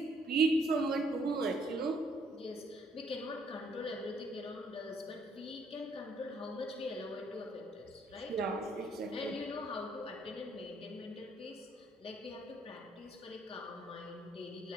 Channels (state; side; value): normal; both; correlation 0.67